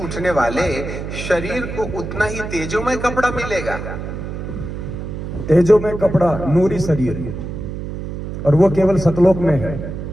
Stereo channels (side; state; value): right; noise; hum, 7 dB below the sound